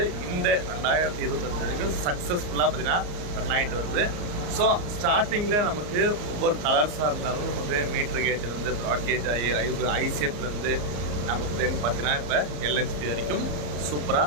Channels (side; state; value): left; late; 34 ms